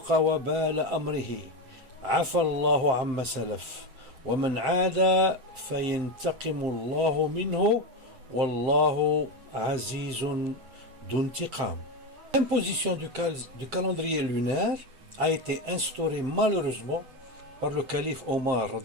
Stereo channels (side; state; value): left; late; 8.0 ms